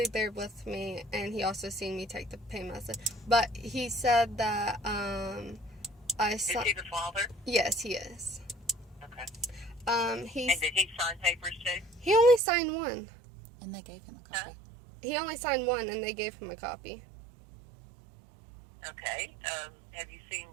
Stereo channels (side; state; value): left; drops out; at 12.4 s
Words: there with me, and he also seen me take the pain medicine. But he said that I Is saw. he the father? Yes, he is. Okay. He's And did he sign papers too? he only signed one. And they gave him a Huh? copy. He only signed one, and they gave him a copy. Okay. Have you seen